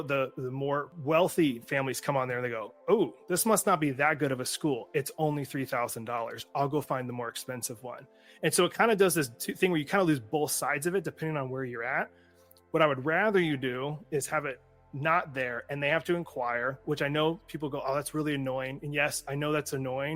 the more wealthy families come on there and they go, oh, this must not be that good of a school. It's only $3,000. I'll go find the more expensive one. And so it kind of does this thing where you kind of lose both sides of it depending on where you're at. What I would rather you do is have it not there and they have to inquire, which I know people go, oh, that's really annoying. And yes, I know that's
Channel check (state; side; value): identical; both; correlation 1.00